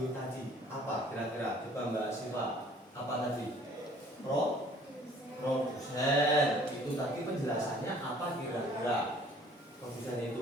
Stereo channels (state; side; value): normal; both; correlation 0.55